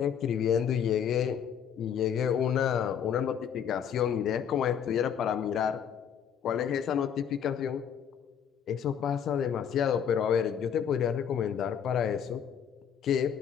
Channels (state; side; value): quieter; right; 8.2 dB